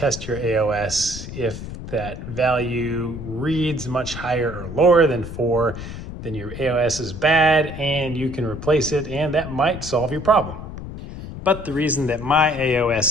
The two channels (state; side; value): noise; left; rumble, 10 dB below the sound